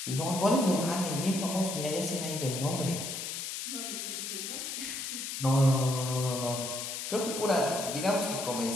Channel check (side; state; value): left; noise; hiss, 5 dB below the sound